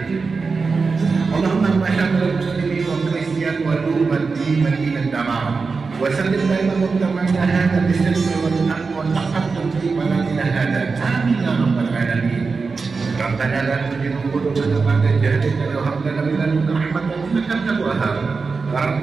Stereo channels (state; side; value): quieter; left; 4.6 dB